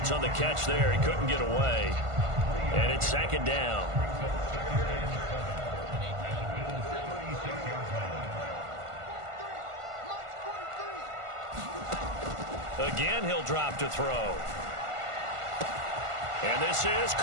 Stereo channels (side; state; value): left; late; 1.5 ms